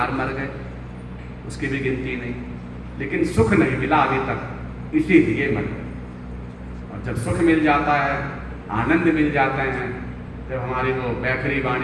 मर गए, उसकी भी गिनती नहीं, लेकिन सुख नहीं मिला अभी तक, इसीलिए मर गए। और जब सुख मिल जाता है, आनंद मिल जाते हैं, जब हमारी वो बैखरी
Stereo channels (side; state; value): both; identical; correlation 1.00